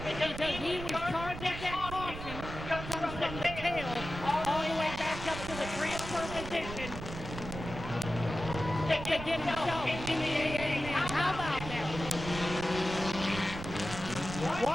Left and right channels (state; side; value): noise; right; rumble, 9 dB below the sound